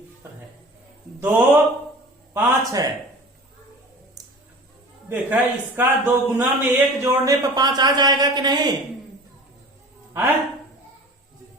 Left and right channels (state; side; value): normal; both; correlation 0.40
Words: पर है? 2, 5 है। देखा, इसका 2 गुना में 1 जोड़ने पर 5 आ जाएगा कि नहीं? है